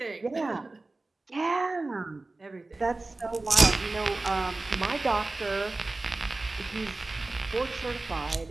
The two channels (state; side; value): quieter; left; 3.2 dB